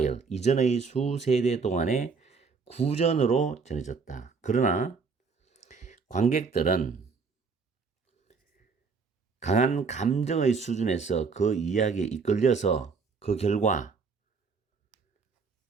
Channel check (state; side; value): quieter; left; 5.0 dB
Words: 이전의 수세대 동안의 구전으로 전해졌다. 그러나 관객들은 강한 감정의 수준에서 그 이야기에 이끌려서 그 결과